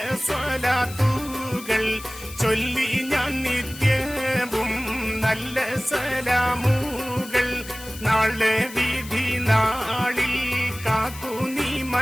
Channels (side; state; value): left; noise; hiss, 15 dB below the sound